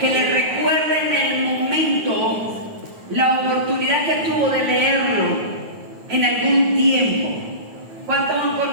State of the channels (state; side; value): late; left; 9.3 ms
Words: le recuerda en el momento la oportunidad que tuvo de leerlo en algún tiempo? ¿Cuántos han